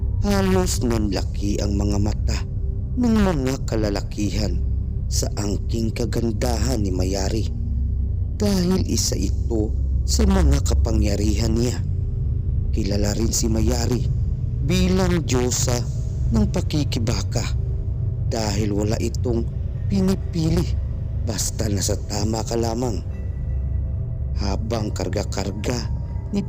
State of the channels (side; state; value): both; identical; correlation 1.00